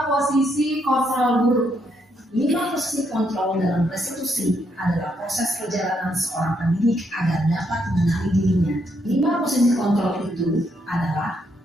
posisi kontrol guru. 5 posisi kontrol dalam restitusi adalah proses perjalanan seorang pendidik agar dapat mengenali dirinya. 5 posisi kontrol itu adalah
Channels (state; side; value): normal; both; correlation 0.76